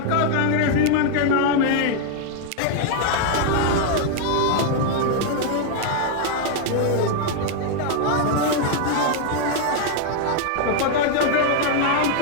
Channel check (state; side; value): different; both; correlation 0.00